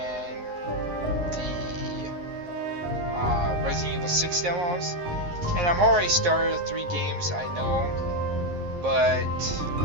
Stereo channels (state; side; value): late; left; 11 ms